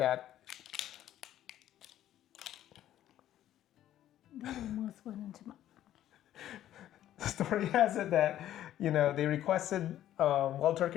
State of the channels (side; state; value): right; quieter; 12.3 dB